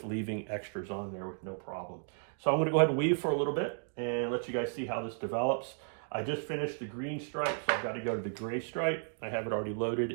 leaving extras on there with no problem. So I'm going to go ahead and weave for a little bit and let you guys see how this develops. I just finished the green stripe, so I've got to go to the gray stripe. I have it already loaded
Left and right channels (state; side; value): silent; left; digital silence